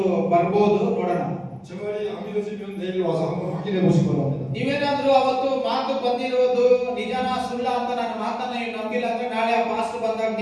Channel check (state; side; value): identical; both; correlation 1.00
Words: ಬರ್ಬೋದು, ನೋಡೋಣ. 제 말이 안 믿어지면 내일 와서 한번 확인해 보시기 바랍니다. ನೀವೇನಾದ್ರೂ ಅವತ್ತು ಮಾತು ಬಂದಿರೋದು ನಿಜನ ಸುಳ್ಳ ಅಂತ ನನ್ನ ಮಾತನ್ನ ನೀವು ನಂಬಿಲ್ಲ ಅಂದ್ರೆ ನಾಳೆ ಆ ಪಾಸ್ಟರ್ ಬಂದಾಗ